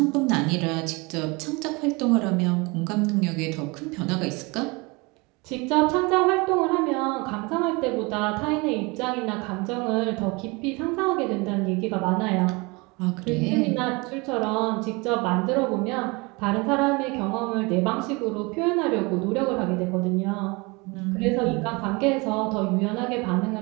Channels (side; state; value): left; quieter; 26.7 dB